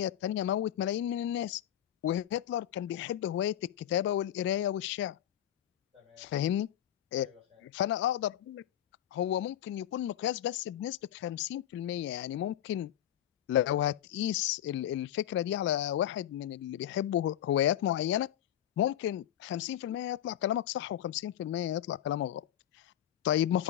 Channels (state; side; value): quieter; right; 11.4 dB